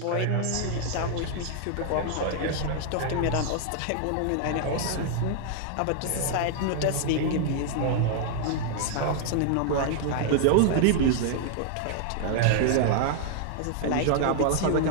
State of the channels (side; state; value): both; different; correlation 0.00